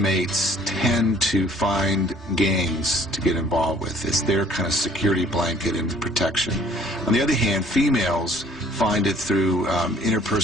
tend to find gangs to get involved with. It's their kind of security blanket and protection. On the other hand, females find it through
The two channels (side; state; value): both; normal; correlation 0.57